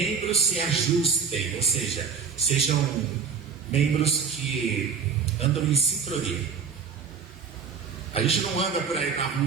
se ajustem. Ou seja, sejam membros que andam em sincronia. A gente não anda por aí na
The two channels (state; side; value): quieter; left; 6.0 dB